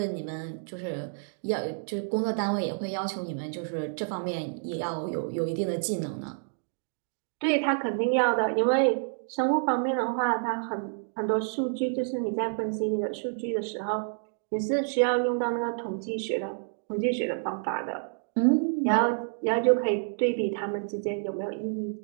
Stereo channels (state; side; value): silent; left; digital silence